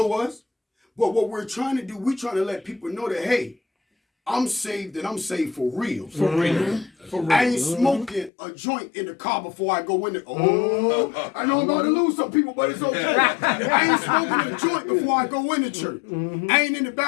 us. But what we're trying to do, we're trying to let people know that, hey, I'm saved and I'm saved for real. For real. For real. I ain't smoking a joint in the car before I go in there. Oh, I know I'm about to lose some people, but it's okay. I ain't smoking a joint before I go in the church. I ain't in the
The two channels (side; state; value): right; drops out; at 8.3 s